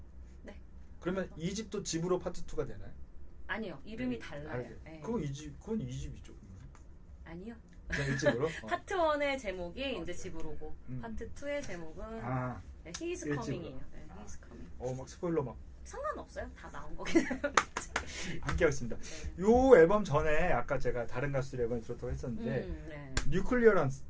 네. 그러면 2집도 집으로 파트 2가 되나요? 아니요. 이름이 달라요. 네. 그건 2집이죠. 아니요. 그냥 1집으로? 파트 1의 제목이 이제 집으로고 파트 2의 제목은 He is Coming이에요. 네, He is Coming. 막 스포일러 막. 상관없어요. 다 나온 거긴 해요. 함께 하겠습니다. 요 앨범 전에 아까 제가 다른 가수 앨범에 들었다고 했었는데 뉴클리어스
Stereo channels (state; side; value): identical; both; correlation 1.00